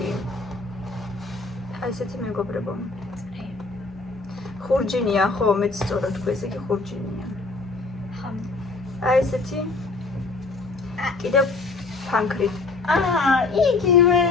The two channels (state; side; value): quieter; right; 3.7 dB